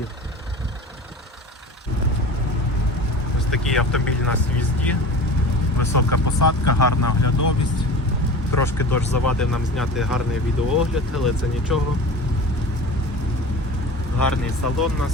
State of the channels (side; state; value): both; normal; correlation 0.36